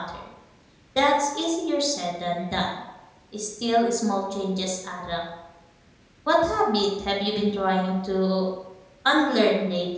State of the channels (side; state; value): both; identical; correlation 1.00